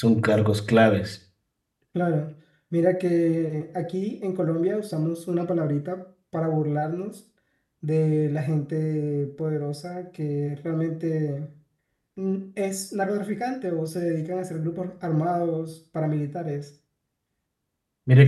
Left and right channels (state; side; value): identical; both; correlation 1.00